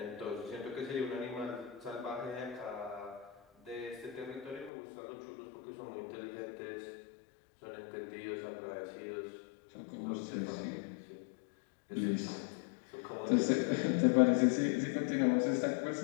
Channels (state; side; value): drops out; right; at 4.7 s